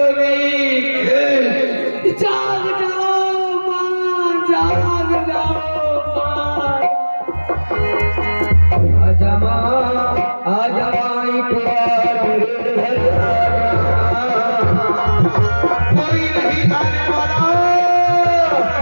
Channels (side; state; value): both; inverted; correlation -1.00